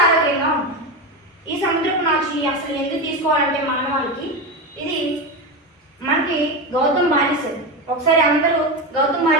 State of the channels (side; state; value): both; normal; correlation 0.17